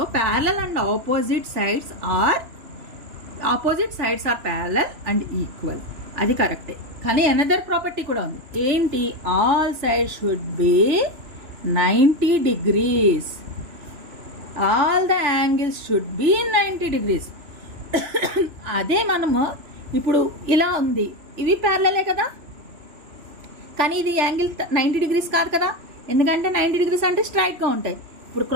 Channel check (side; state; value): left; late; 3.0 ms